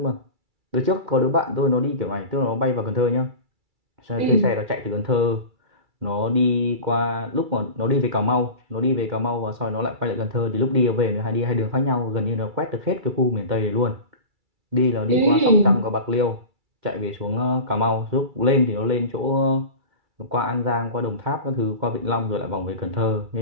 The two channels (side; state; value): left; late; 2.3 ms